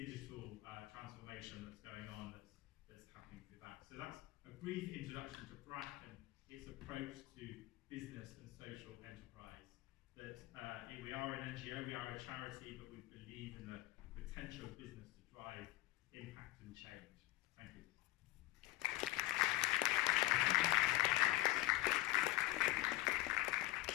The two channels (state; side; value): quieter; right; 17.3 dB